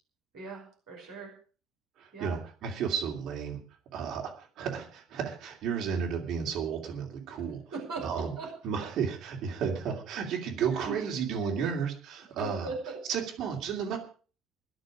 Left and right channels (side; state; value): left; quieter; 6.3 dB